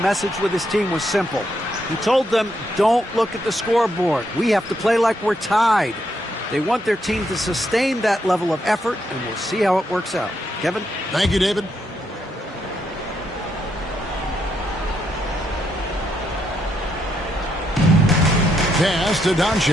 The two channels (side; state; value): both; normal; correlation 0.78